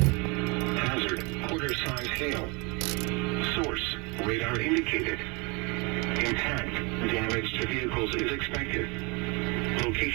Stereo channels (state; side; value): quieter; left; 29.3 dB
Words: Hazard, quarter-size hail. Source, radar indicated. Intact, damage to vehicles is expected.